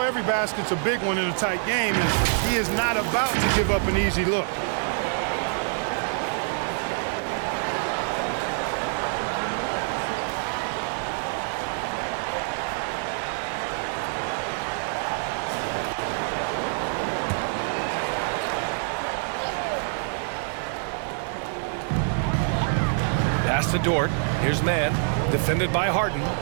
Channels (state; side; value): silent; left; 61 dB below the other